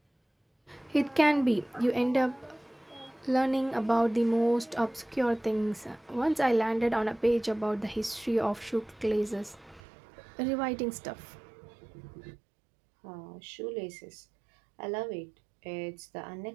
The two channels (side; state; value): left; drops out; at 9.8 s